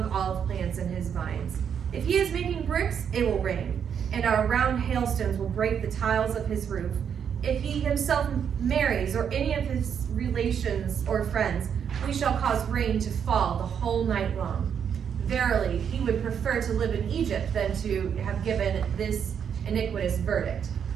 olive plants and his vines. If he is making bricks, it will rain, and our round hailstones will break the tiles of his roof. If he himself marries, or any of his relations or friends, we shall cause rain to fall the whole night long. Verily, he would prefer to live in Egypt than to have given this iniquitous verdict.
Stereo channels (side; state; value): left; quieter; 7.8 dB